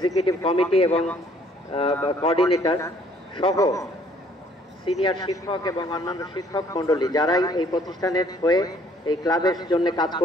কমিটি এবং কোঅর্ডিনেটর সহ সিনিয়র শিক্ষক এবং অন্যান্য শিক্ষক মণ্ডলী যারাই এই প্রতিষ্ঠানের হয়ে এই ক্লাবের জন্য কাজ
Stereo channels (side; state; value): both; normal; correlation 0.61